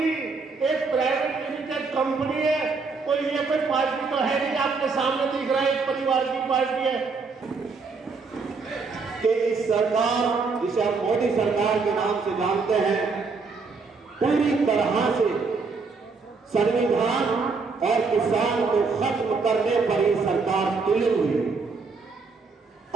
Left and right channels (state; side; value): quieter; left; 4.5 dB